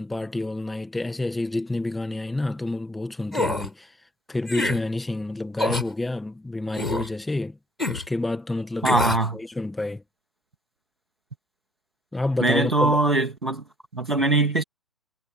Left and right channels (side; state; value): both; normal; correlation 0.59